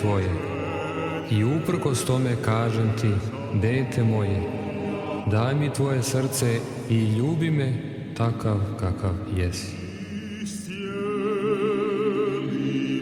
i uprkos tome kažem ti, dete moje, daj mi tvoje srce i ljubi me takav kakav jesi.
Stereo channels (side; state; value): both; identical; correlation 1.00